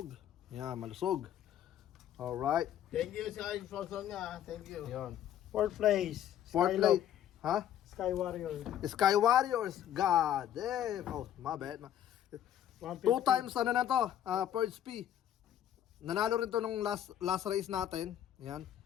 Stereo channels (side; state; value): right; quieter; 10.8 dB